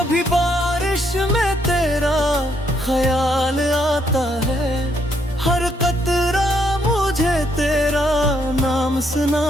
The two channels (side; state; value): both; normal; correlation 0.73